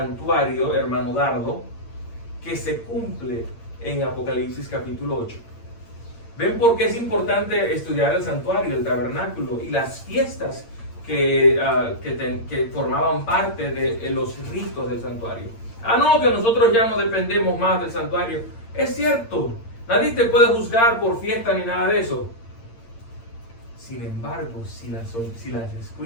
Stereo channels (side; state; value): right; late; 8.7 ms